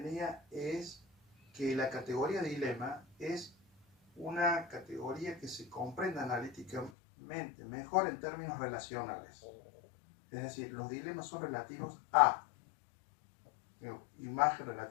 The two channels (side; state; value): right; drops out; at 6.9 s